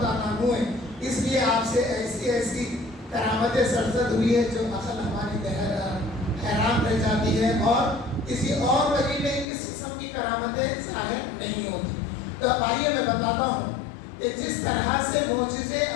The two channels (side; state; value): right; drops out; at 9.5 s